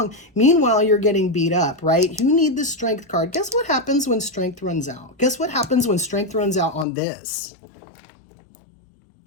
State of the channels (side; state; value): right; drops out; at 6.9 s